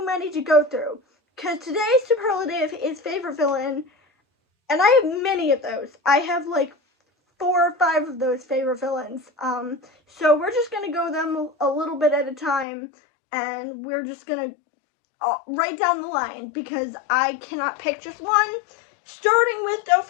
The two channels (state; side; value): drops out; right; at 12.7 s